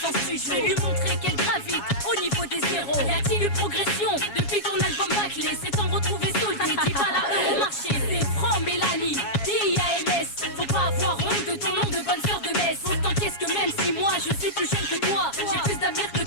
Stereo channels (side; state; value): right; late; 7.3 ms